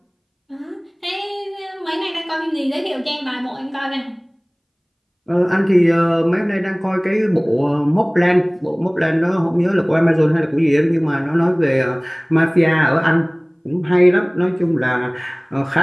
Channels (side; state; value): both; identical; correlation 1.00